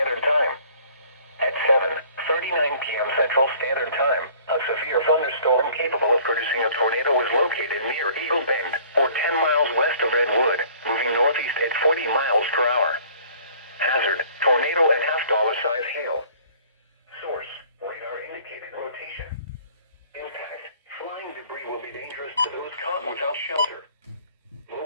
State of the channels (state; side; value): inverted; both; correlation -0.53